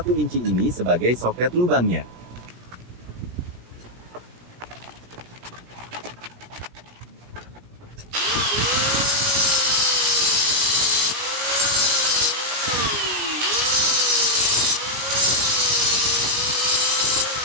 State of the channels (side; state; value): left; late; 17 ms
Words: inci ini sebagai soket lubangnya.